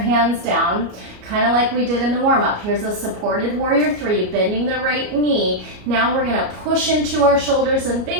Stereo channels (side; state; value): left; late; 33 ms